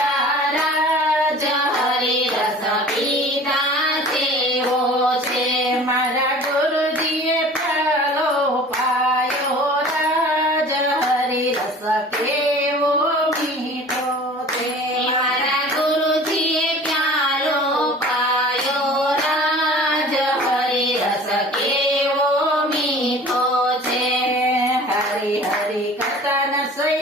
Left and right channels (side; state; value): both; normal; correlation 0.44